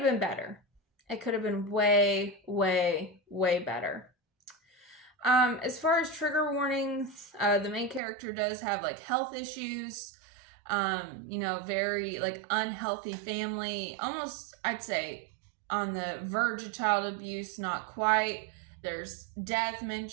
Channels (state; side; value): drops out; left; at 8.0 s